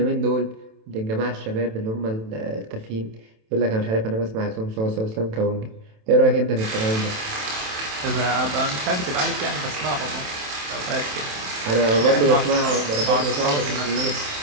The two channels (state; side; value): late; left; 27 ms